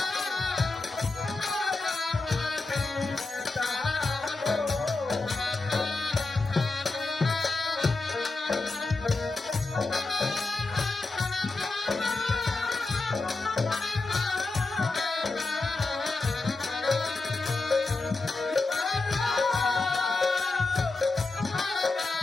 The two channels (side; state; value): right; quieter; 3.5 dB